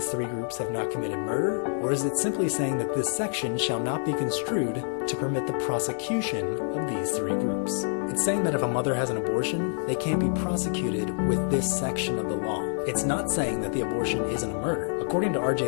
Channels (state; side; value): silent; right; digital silence